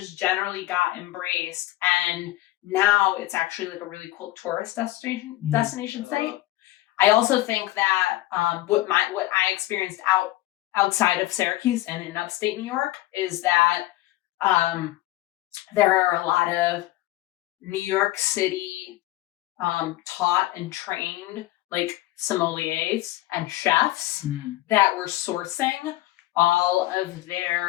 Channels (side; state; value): right; quieter; 16.9 dB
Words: generally got embraced. And now it's actually like a really cool tourist destination site. I also think that what I experienced outside of Syracuse and in upstate New York is that there are a lot of New York City taught and trained like sommeliers and chefs that were sourcing all of